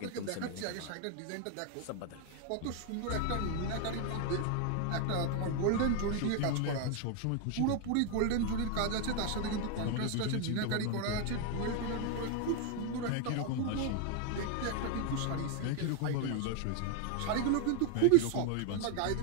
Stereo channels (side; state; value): both; different; correlation 0.00